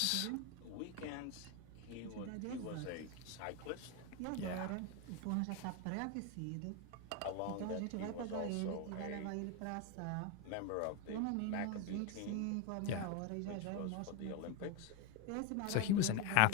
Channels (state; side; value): different; both; correlation 0.02